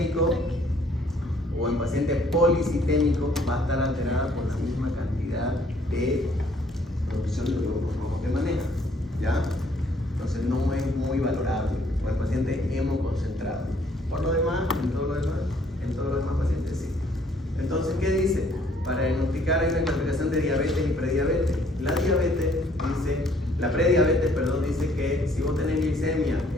o en paciente policitémico va a estar alterada por la misma cantidad de producción de glóbulos rojos que maneja, ¿ya? Entonces no es muy valorable, o el paciente hemoconcentrado. Por lo demás, en todos los demás pacientes sí. Entonces, ¿qué dice? Para diagnosticar hay una clasificación de diabetes y prediabetes. La prediabetes, dice que si vos tenés glicemia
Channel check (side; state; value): both; normal; correlation 0.63